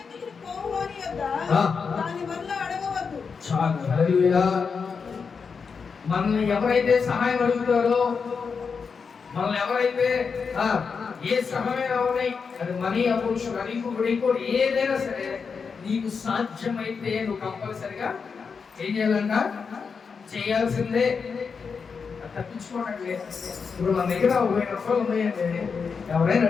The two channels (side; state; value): right; quieter; 5.6 dB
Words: చాలు. హల్లెలూయా. మనల్ని ఎవరైతే సహాయం అడుగుతారో, మనల్ని ఎవరైతే ఏ సహాయం అవునాయి, అది మనీ అవ్వచ్చు, ఇంకోటి ఏదైనా సరే నీకు సాధ్యమైతే నువ్వు కంపల్సరిగా ఏం చేయాలంట, చేయాల్సిందే, తప్పించుకోవడం లేదు. ఇప్పుడు మన దగ్గర 1000 రూపాయలు ఉన్నాయండి, ఎవరైనా